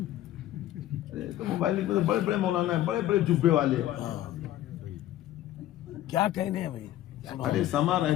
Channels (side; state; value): right; quieter; 13.6 dB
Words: تو موبائل میں بڑے بڑے مولانا ہیں بڑے بڑے جبے والے کیا کہنے ہیں بھائی ارے سما